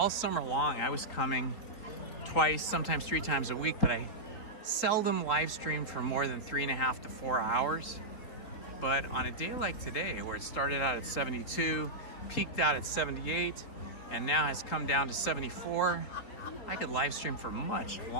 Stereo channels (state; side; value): late; right; 4.3 ms